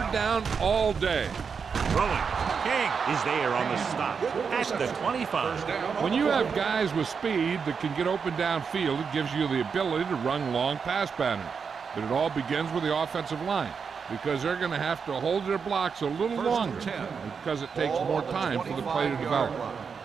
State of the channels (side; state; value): left; quieter; 6.0 dB